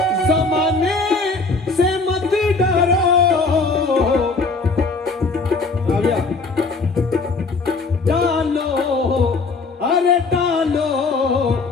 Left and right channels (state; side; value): quieter; right; 3.9 dB